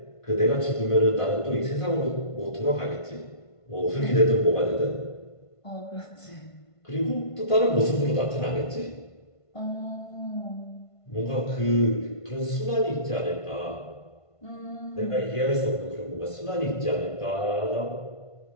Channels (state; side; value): late; right; 1.5 ms